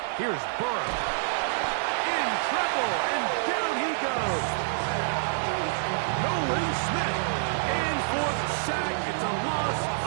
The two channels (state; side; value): silent; left; digital silence